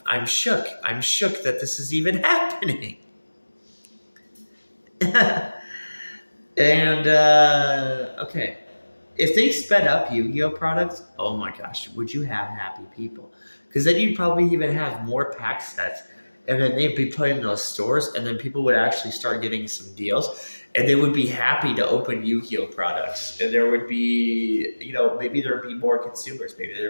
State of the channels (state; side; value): inverted; both; correlation -1.00